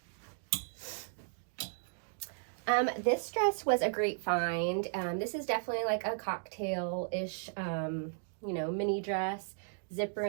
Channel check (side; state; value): left; silent; digital silence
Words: This dress was a great find. This is definitely like a cocktail-ish, you know, mini dress. Zipper